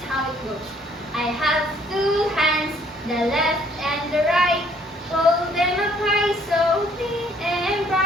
how it goes. I have two hands, the left and the right. Hold them up high so clean and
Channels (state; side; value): normal; both; correlation 0.63